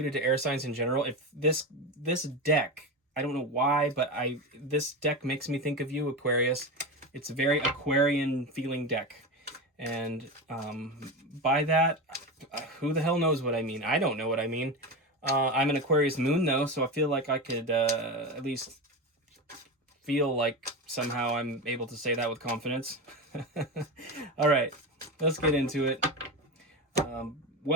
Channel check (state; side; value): normal; both; correlation 0.20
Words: to air signs in general. If this deck, I don't know why, but this deck makes me think of you, Aquarius. It's a very Aquarian feeling deck, and by that, who the hell knows what I mean? I don't know what I mean. I'm an Aquarius moon though, so I feel like I could at least feel like somehow I'm able to say that with confidence. All right, let's get into it.